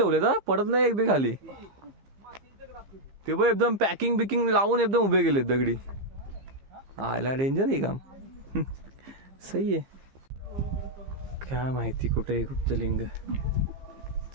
तर पडत नाही एकदा खाली. ते बघ एकदम पॅकिंग बिकिंग लावून एकदम उभे गेले दगडी. आयला डेंजर आहे काम. सही आहे. काय माहिती कुठे कुठचं लिंग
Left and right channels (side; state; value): left; late; 15 ms